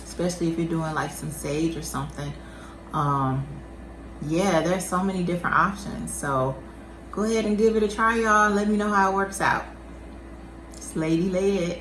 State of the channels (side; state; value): both; identical; correlation 1.00